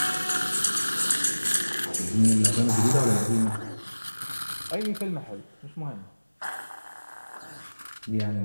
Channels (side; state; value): both; inverted; correlation -1.00